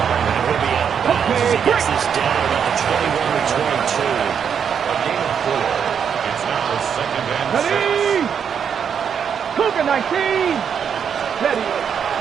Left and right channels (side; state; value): left; quieter; 7.5 dB